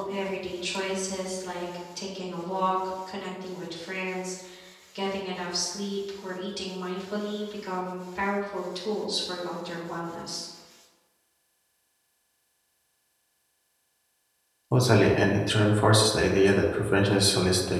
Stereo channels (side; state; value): both; identical; correlation 1.00